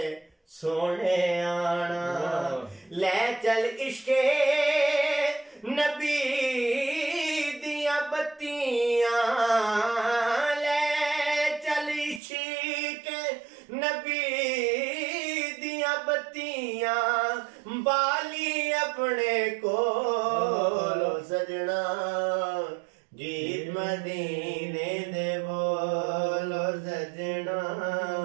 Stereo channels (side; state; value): left; drops out; at 12.2 s